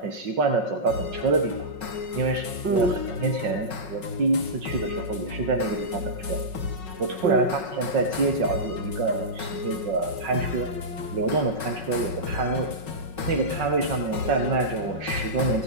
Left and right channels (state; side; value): late; left; 5.4 ms